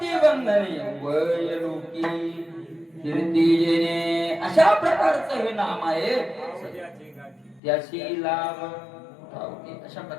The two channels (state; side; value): drops out; right; at 7.6 s